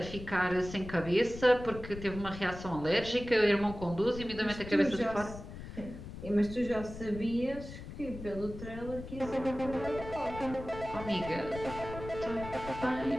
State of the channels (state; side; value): noise; left; rumble, 11 dB below the sound